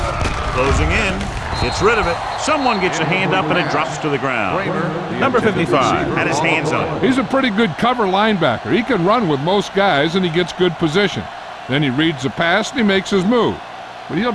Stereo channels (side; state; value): both; identical; correlation 1.00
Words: Closing in. Gets rid of it. Someone gets a hand up and it drops to the ground. Number 55 had his hands on it. He's a pretty good cover linebacker. He can run with most guys, and he gets good position. Then he reads the pass, and he makes his move. But he'll